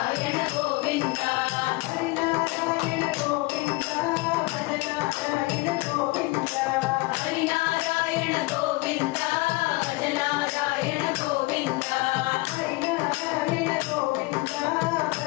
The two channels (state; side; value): quieter; right; 23.0 dB